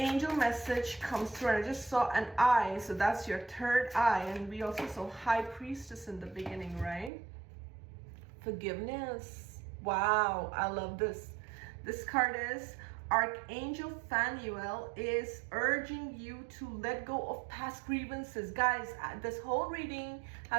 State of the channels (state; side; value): drops out; left; at 7.1 s